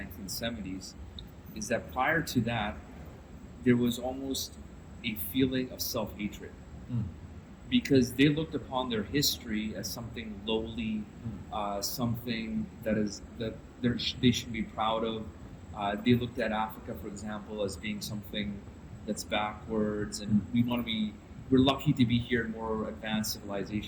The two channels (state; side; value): identical; both; correlation 1.00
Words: 1970s, is that prior to that, there was almost a feeling of self-hatred. Because they looked upon their history as something lowly, something that they should be proud of. They looked at Africa, for example, as being something that's backwards, and we're lucky to be here in more advanced